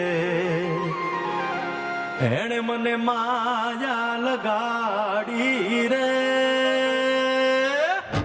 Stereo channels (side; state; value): both; identical; correlation 1.00